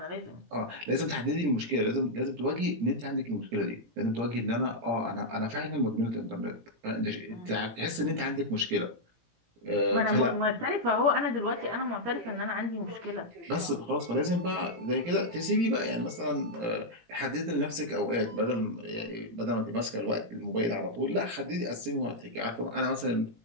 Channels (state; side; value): late; left; 18 ms